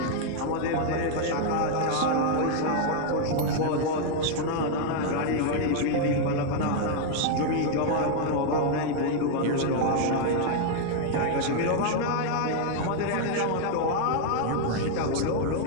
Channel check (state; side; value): different; both; correlation 0.00